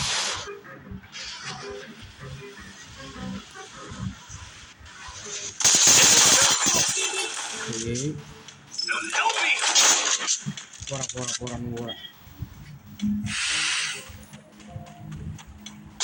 పోరా నువ్వు కూడా.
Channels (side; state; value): both; identical; correlation 1.00